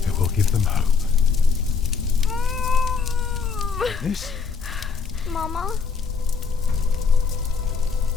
it will give them hope. This? Mama?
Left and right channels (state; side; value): quieter; right; 5.4 dB